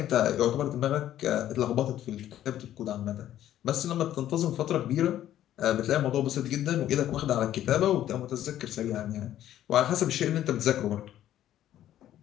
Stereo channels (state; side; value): quieter; right; 12.1 dB